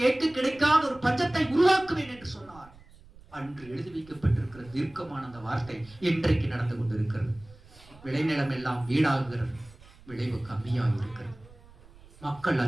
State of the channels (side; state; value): right; noise; rumble, 23 dB below the sound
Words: கேட்டு கிடைக்காத ஒரு பஞ்சத்தை உருவாக்குவேன் என்று சொன்னார். அன்று எழுதி வைக்கப்பட்டிருக்கிற தீர்க்கமான அந்த வார்த்தை இன்றைக்கு நடந்து கொண்டிருக்கிறது. விளைநிலம் எல்லாம் வீடாகிறது, விளைவு கம்மியாக இருக்கிறது, மக்கள்